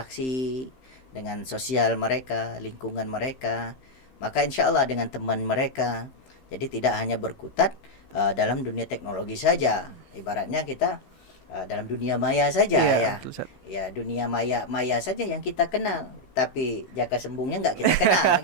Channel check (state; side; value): late; right; 15 ms